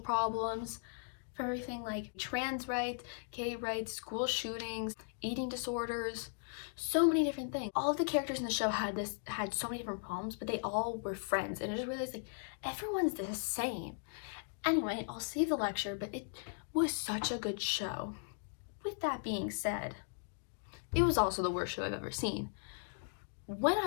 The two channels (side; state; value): right; silent; digital silence